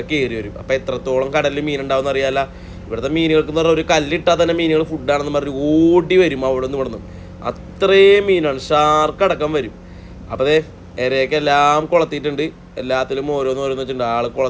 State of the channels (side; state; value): both; identical; correlation 1.00